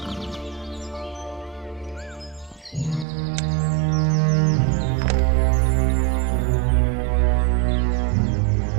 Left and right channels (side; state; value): left; drops out; at 3.1 s